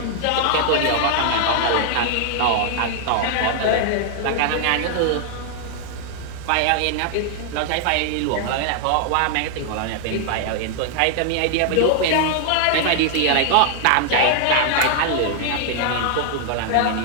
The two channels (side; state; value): both; different; correlation 0.00